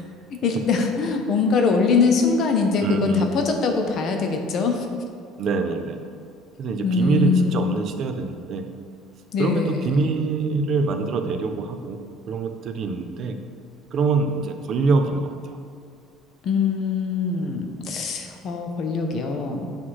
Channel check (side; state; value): both; normal; correlation 0.50